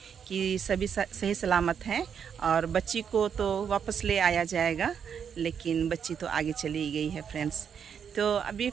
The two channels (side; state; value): left; quieter; 7.5 dB